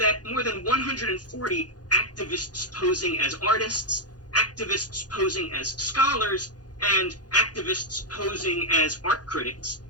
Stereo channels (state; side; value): late; right; 0.69 ms